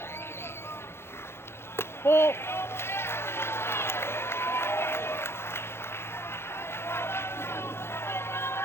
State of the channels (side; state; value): right; late; 0.12 ms